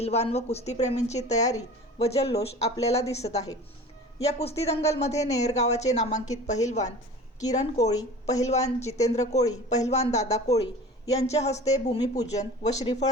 व कुस्तीप्रेमींची तयारी व जल्लोष आपल्याला दिसत आहे। या कुस्ती दंगलमध्ये नेर गावाचे नामांकित पहिलवान किरण कोळी, पहिलवान जितेंद्र कोळी, पहिलवान दादा कोळी यांच्या हस्ते भूमिपूजन व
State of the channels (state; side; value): normal; both; correlation 0.40